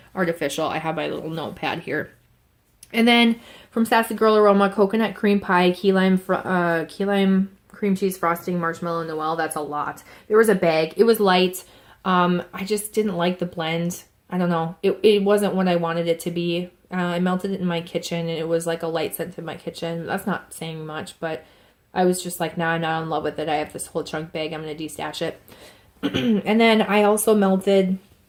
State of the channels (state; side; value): identical; both; correlation 1.00